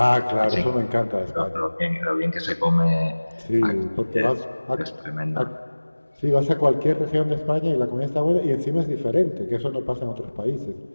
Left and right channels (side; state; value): both; inverted; correlation -1.00